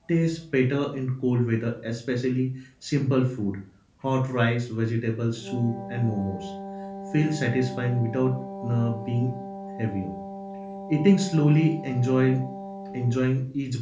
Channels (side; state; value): both; identical; correlation 1.00